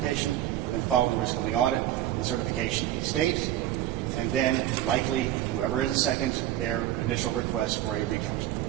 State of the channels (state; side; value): quieter; left; 13.1 dB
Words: and then following the risk limiting audit, the certification of the state, and then likely, whoever is second, their initial request for a recount.